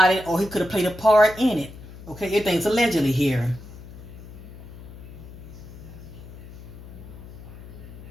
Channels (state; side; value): noise; left; hum, 15 dB below the sound